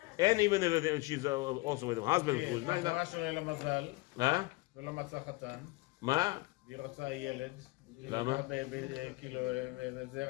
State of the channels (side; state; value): right; quieter; 22.1 dB